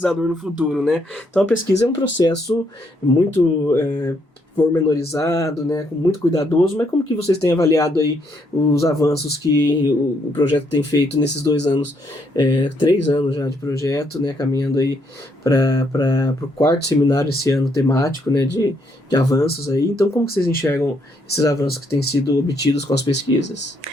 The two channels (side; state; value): both; normal; correlation 0.73